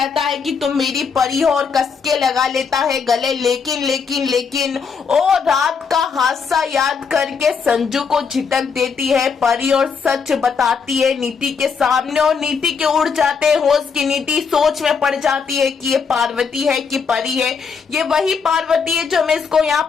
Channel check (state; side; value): quieter; right; 5.8 dB